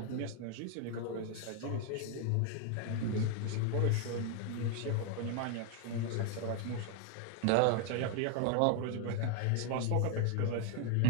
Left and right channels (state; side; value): different; both; correlation 0.01